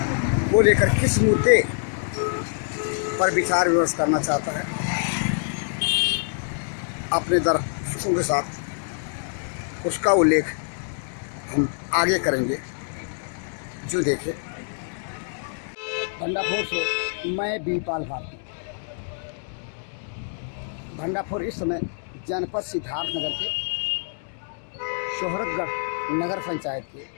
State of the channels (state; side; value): silent; right; digital silence